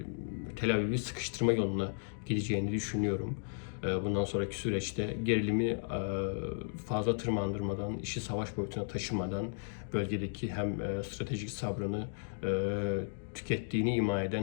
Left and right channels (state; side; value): silent; right; digital silence